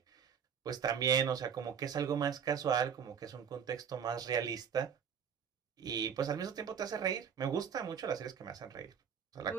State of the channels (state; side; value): quieter; left; 7.5 dB